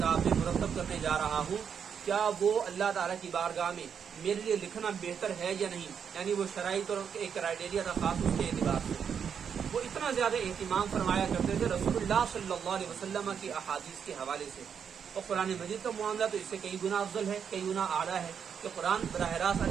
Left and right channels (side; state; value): left; quieter; 7.3 dB